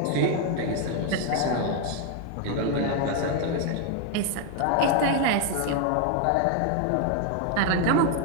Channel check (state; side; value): different; both; correlation 0.01